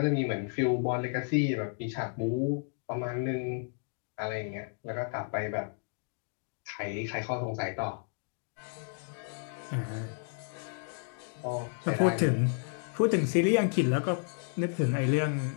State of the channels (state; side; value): silent; right; 56 dB below the other